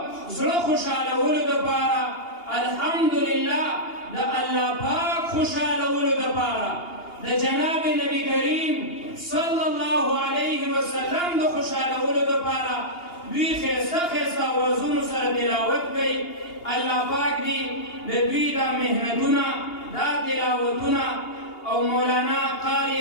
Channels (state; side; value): late; right; 2.8 ms